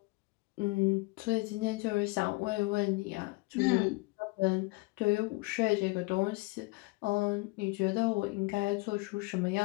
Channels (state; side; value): quieter; right; 25.6 dB